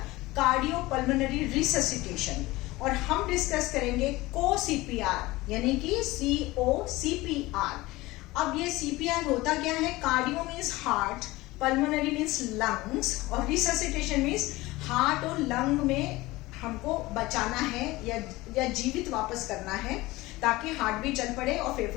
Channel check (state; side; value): quieter; right; 19.9 dB